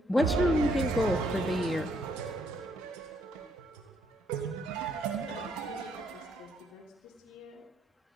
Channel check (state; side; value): normal; both; correlation 0.71